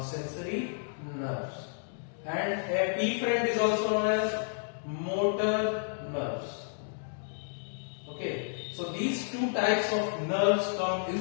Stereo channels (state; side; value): silent; right; digital silence